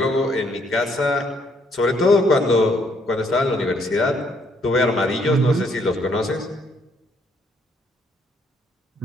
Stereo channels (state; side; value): normal; both; correlation 0.69